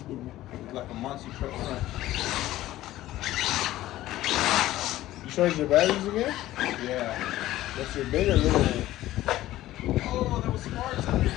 like a monster truck front. You charge your batteries again? Yeah. That's your big or little one? Oh, there was sparks under it.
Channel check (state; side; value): quieter; right; 15.2 dB